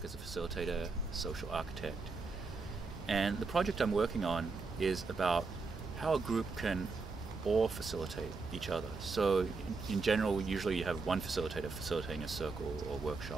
as a facilitator, social architect. And the project I'm working on is about how a group can all facilitate each other. So in general, usually you have one facilitator facilitating a circle or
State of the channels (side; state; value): left; quieter; 4.2 dB